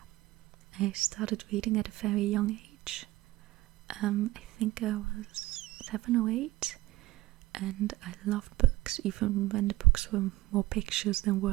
I started reading at a very young age. I think I was 7 or 8, and I loved books, even when the books were more pictures than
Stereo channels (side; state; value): left; quieter; 17.9 dB